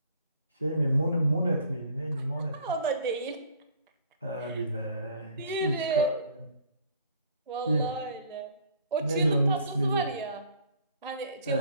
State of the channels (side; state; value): both; inverted; correlation -0.55